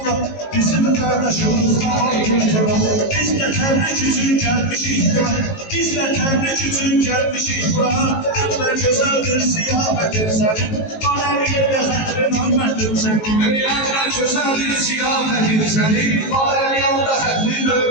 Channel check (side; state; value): right; late; 19 ms